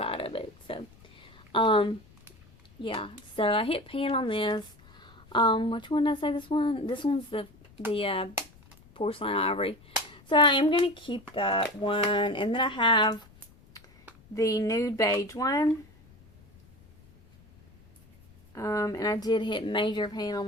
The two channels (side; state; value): left; noise; rumble, 26 dB below the sound